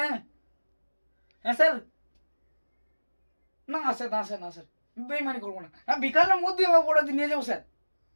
হ্যাঁ হ্যাঁ স্যার। না স্যার, না স্যার, না স্যার, বেইমানি করবো না। হ্যাঁ বিকালের মধ্যে আমার অপরাধী নিয়ে যাবো স্যার।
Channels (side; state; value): both; inverted; correlation -1.00